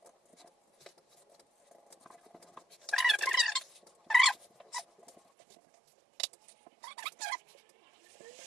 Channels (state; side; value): drops out; left; at 5.2 s